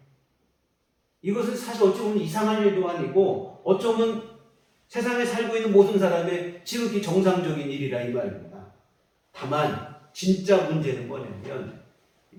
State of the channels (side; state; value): both; identical; correlation 1.00